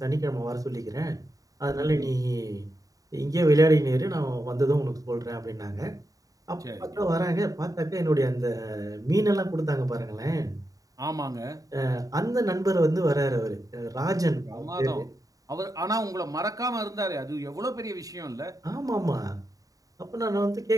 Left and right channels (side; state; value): left; late; 0.17 ms